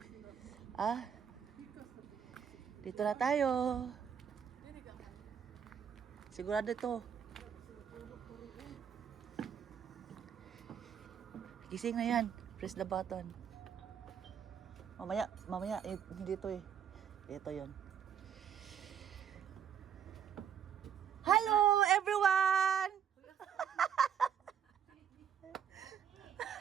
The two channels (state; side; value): quieter; left; 8.3 dB